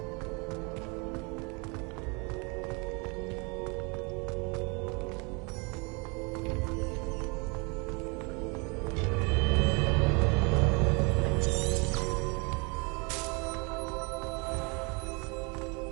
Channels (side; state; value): left; quieter; 31.2 dB